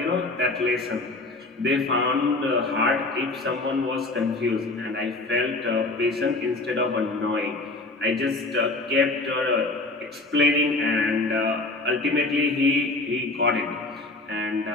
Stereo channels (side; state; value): right; quieter; 3.1 dB